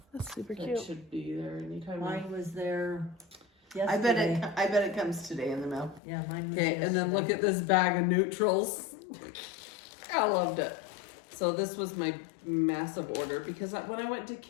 That's super that cute. should be there anytime now. Mine was there I bet yesterday. it comes today in the mail. Yeah, mine was Okay, yesterday. and then look at this bag of neutrals. I loved it. So this was my massive order because when I went to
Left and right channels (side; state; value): right; drops out; at 6.0 s